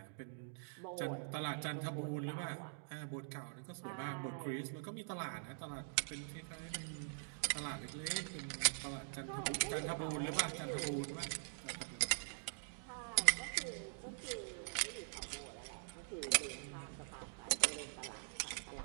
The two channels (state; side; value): silent; left; digital silence